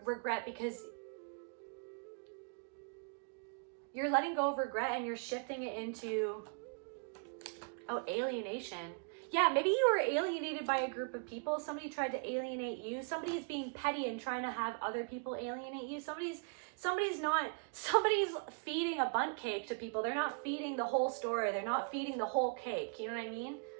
regret because you're letting go of regret and you're shifting it into, oh, alienation. Yeah, maybe you were alienated by a group of people. Somebody tried to alienate you. Somebody is being petty and trying to have other people alienate you. Somebody's feeding a bundt cake to people. They're not feeding the whole story. They're not feeding the whole cake. You know what I mean?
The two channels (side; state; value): left; quieter; 39.8 dB